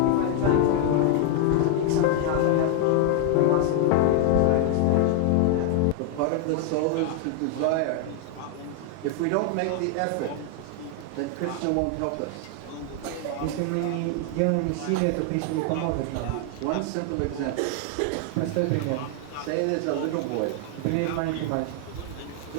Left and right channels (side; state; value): both; different; correlation 0.00